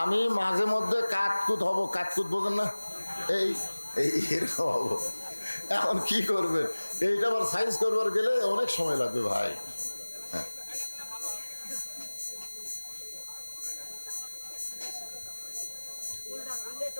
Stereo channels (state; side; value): inverted; both; correlation -1.00